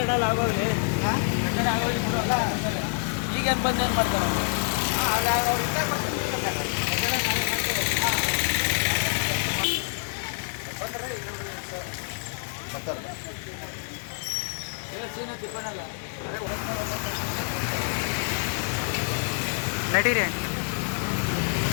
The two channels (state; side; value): silent; right; 60 dB below the other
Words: ಆಗೋಗ್ಲಿ ಕಟ್ಟಡ ಆಗೋಗ್ಲಿ ಈಗೇನು ಬಂದು ಏನು ಮಾಡ್ತಾರೆ ಅವ್ರು ಇದ್ದಾಗ ನಡೀರಿ